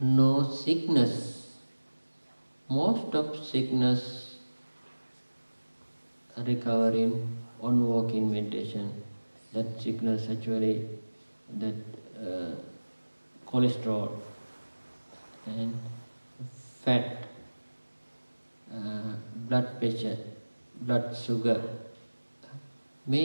sickness. Most of sickness recovering on walking meditation. That sickness actually, that cholesterol and fat, blood pressure, blood sugar,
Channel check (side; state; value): both; inverted; correlation -1.00